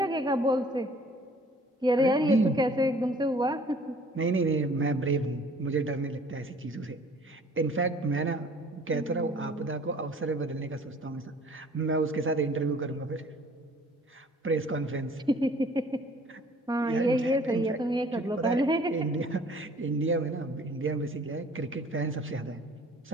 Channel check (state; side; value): normal; both; correlation 0.53